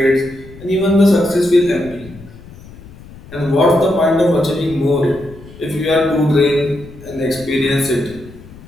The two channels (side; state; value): left; noise; rumble, 19 dB below the sound